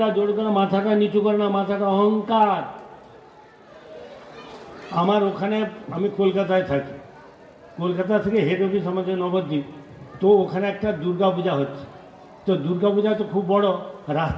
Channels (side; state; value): both; identical; correlation 1.00